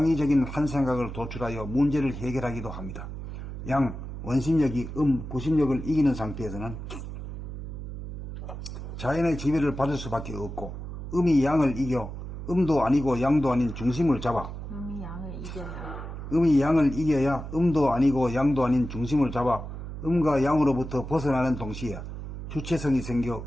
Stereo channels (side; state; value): right; noise; hum, 8 dB below the sound